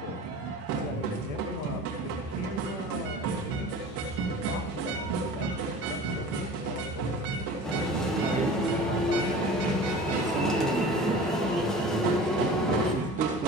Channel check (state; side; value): normal; both; correlation 0.39